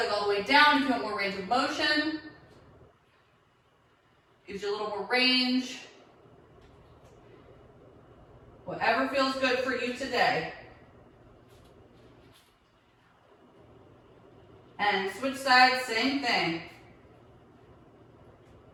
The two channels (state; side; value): identical; both; correlation 1.00